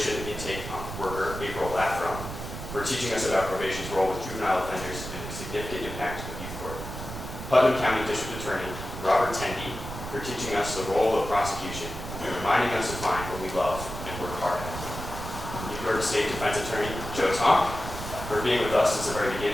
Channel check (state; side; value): noise; right; rumble, 9 dB below the sound